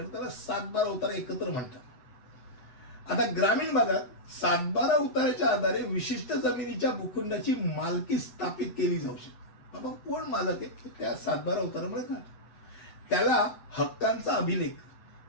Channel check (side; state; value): right; late; 8.1 ms